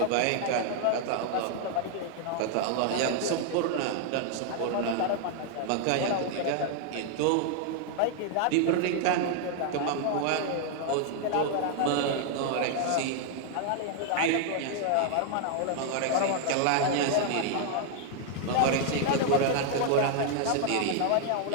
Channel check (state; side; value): different; both; correlation 0.00